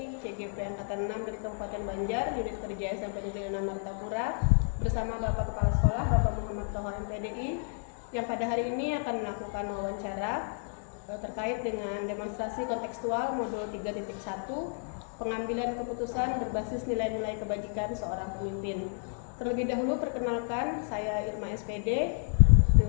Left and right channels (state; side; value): silent; right; 57 dB below the other